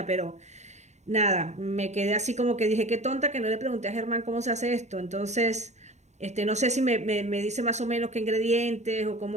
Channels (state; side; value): late; left; 0.33 ms